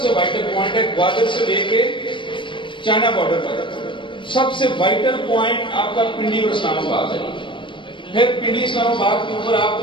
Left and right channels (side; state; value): right; late; 0.24 ms